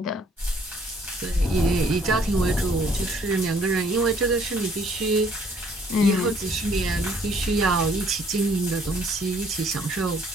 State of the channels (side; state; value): both; normal; correlation 0.62